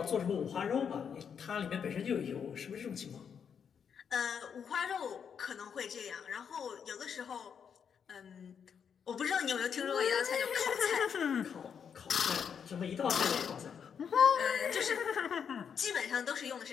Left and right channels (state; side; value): quieter; right; 7.3 dB